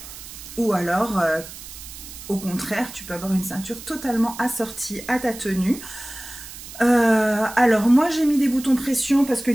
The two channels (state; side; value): noise; right; hiss, 14 dB below the sound